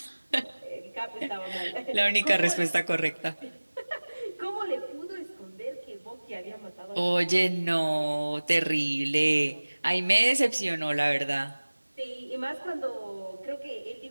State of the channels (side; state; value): both; inverted; correlation -1.00